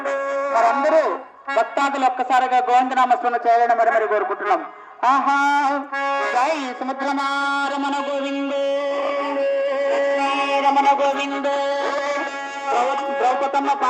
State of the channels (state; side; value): identical; both; correlation 1.00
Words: మరందరూ భక్తాదులు ఒక్కసారిగా గోవిందనామస్మరణ చేయాలని మరి కోరుకుంటున్నాం. ఆహా జై సముద్రమారమణ గోవిందో, రమణ గోవిందో. ద్రౌపదమ్మ